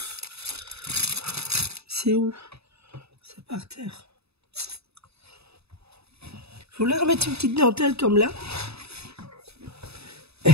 C'est où? C'est par terre. Je voulais remettre une petite dentelle comme là.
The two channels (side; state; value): left; late; 0.79 ms